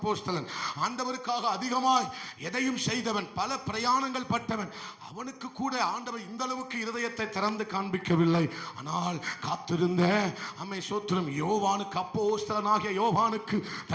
ஆண்டவருக்காக அதிகமாய் எதையும் செய்தவன், பல பிரயாணங்கள் பட்டவன். அவனுக்கு கூட ஆண்டவர் இந்த அளவுக்கு இருதயத்தை திறந்து காண்பிக்கவில்லை. ஆனால் காத்திருந்த சோத்திரம் யோவானுக்கு, அப்போஸ்தலனாகிய யோவானுக்கு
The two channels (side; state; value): both; identical; correlation 1.00